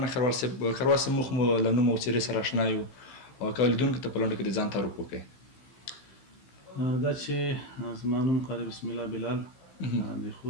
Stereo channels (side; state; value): right; late; 15 ms